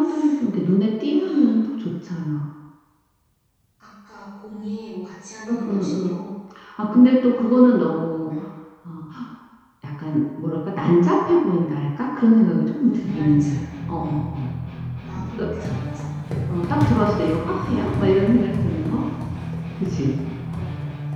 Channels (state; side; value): identical; both; correlation 1.00